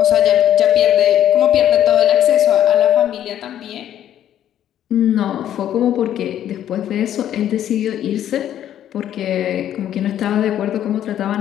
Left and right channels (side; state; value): right; quieter; 11.0 dB